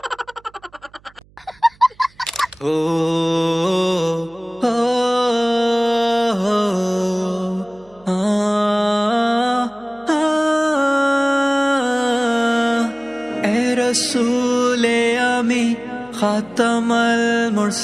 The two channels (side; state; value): right; noise; hum, 30 dB below the sound